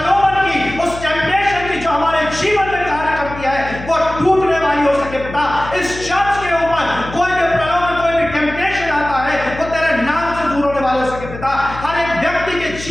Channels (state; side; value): noise; left; hum, 12 dB below the sound